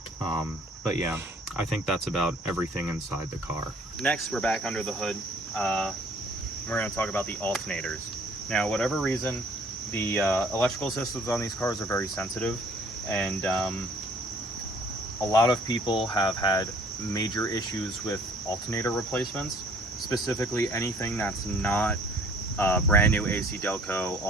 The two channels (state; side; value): normal; both; correlation 0.56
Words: But yeah, I think that's about everything inside the car. Next, we're back under the hood. We're going to talk about the alternators. Now, whatever reason, the electrical systems on these cars are very sensitive, and a lot of people have had major issues with alternator replacements, specifically anything that's not brand new AC Delco